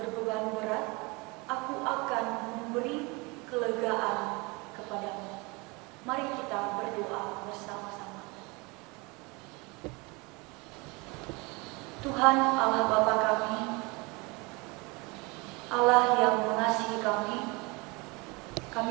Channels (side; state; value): left; quieter; 26.8 dB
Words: berat, aku akan memberi kelegaan kepadamu." Mari kita berdoa bersama-sama. Tuhan Allah Bapa kami, Allah yang mengasihi